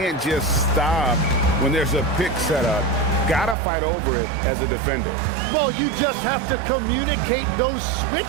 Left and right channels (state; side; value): drops out; left; at 3.6 s